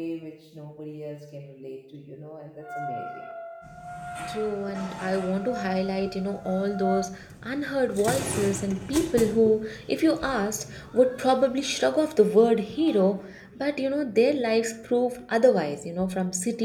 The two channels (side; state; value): both; identical; correlation 1.00